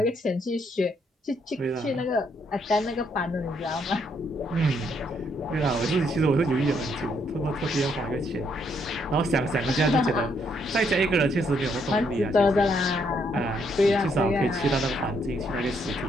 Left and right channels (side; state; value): both; normal; correlation 0.72